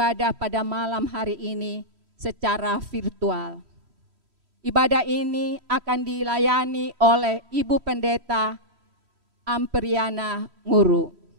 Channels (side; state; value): left; late; 3.1 ms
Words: pada malam hari ini secara virtual. Ibadah ini akan dilayani oleh Ibu Pendeta Amperiana Nguru.